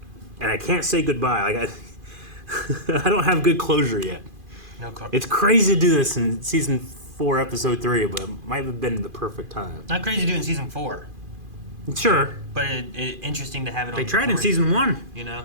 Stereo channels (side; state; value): left; late; 2.5 ms